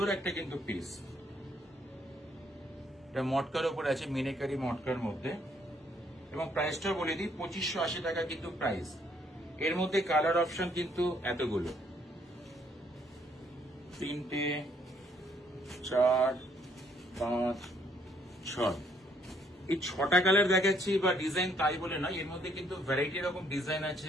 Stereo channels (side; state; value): both; normal; correlation 0.68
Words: একটা কিন্তু পিস। এটা মটকার উপর আছে, মিনাকারি মটকার মধ্যে, এবং প্রাইসটা বলে দিই 2580 টাকা কিন্তু প্রাইস। এর মধ্যে কালার অপশন কিন্তু এতগুলো, 3টে 4 5 6। এই 6টা কালার দেখাচ্ছি বা ডিজাইন তাই বলে নয়, এর মধ্যে কিন্তু ভ্যারাইটি রকম ডিজাইন আছে,